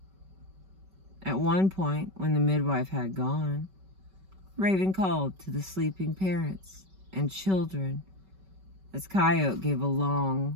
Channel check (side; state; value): left; late; 5.2 ms